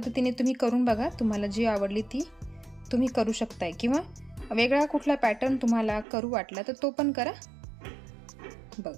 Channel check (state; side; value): drops out; left; at 6.1 s